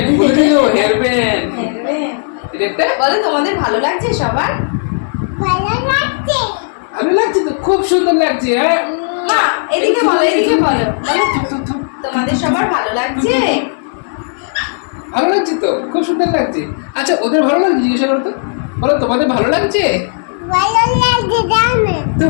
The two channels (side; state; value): right; silent; 67 dB below the other